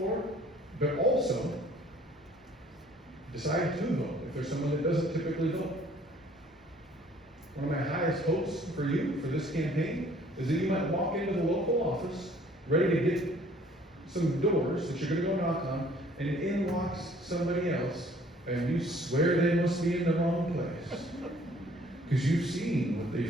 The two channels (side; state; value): both; normal; correlation 0.57